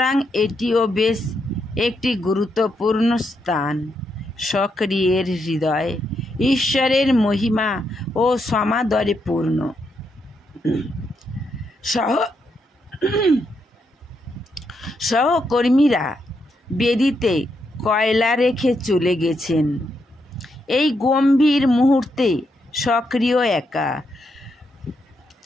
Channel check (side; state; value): both; normal; correlation 0.80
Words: এটিও বেশ একটি গুরুত্বপূর্ণ স্থান। সক্রিয়ের হৃদয় ঈশ্বরের মহিমা ও সমাদরে পূর্ণ। সহকর্মীরা বেদিতে কয়লা রেখে চলে গেছেন। এই গম্ভীর মুহূর্তে সক্রিয় একা,